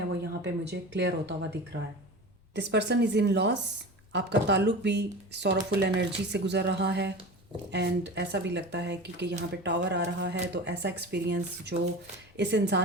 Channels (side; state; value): both; normal; correlation 0.32